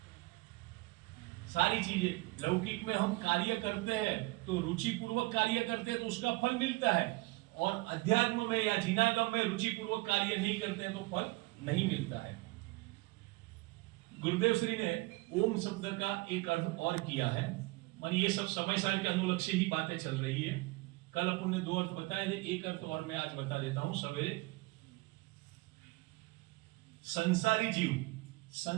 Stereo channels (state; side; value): quieter; left; 23.2 dB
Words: सारी चीजें लौकिक में हम कार्य करते हैं तो रुचि पूर्वक कार्य करते हैं तो उसका फल मिलता है, और अध्यात्म में या जिनागम में रुचि पूर्वक कार्य नहीं करते हैं तो फल नहीं मिलता है। गुरुदेव श्री ने ओम शब्द का एक अर्थ और किया है, मानी ये सब समय सार के अनुलक्ष्य से ही बातें चल रही है। कल अपन ने 2 अर्थ बताए थे, एक अर्थ और मैं आज बता देता हूं सवेरे। संसारी जीव